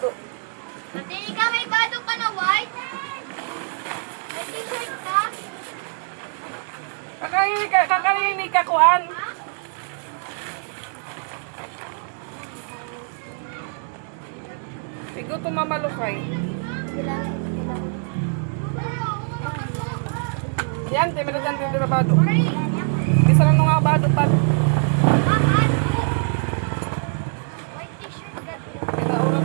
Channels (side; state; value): left; silent; 58 dB below the other